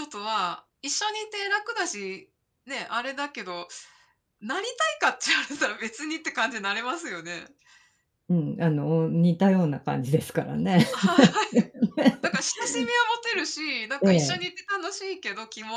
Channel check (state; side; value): identical; both; correlation 1.00